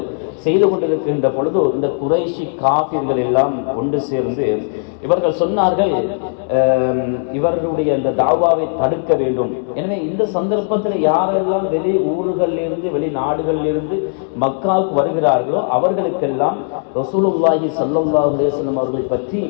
செய்து கொண்டிருக்கின்ற பொழுது இந்த குறைஷி காஃபிர்கள் எல்லாம் ஒன்று சேர்ந்து இவர்கள் சொன்னார்கள், இவர்களுடைய அந்த தாவாவை தடுக்க வேண்டும். எனவே இந்த சந்தர்ப்பத்தில் யாரெல்லாம் வெளி ஊர்களிலிருந்து வெளிநாடுகளிலிருந்து மக்காவுக்கு வருகிறார்களோ அவர்களுக்கெல்லாம் ரசூலுல்லாஹி ஸல்லல்லாஹு அலைஹி வஸல்லம் அவர்களை பற்றி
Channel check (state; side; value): silent; right; 67 dB below the other